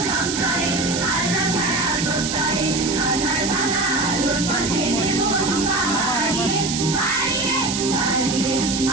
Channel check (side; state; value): right; noise; hiss, 3 dB below the sound